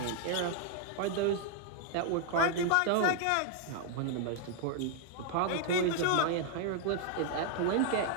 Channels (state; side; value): different; both; correlation 0.00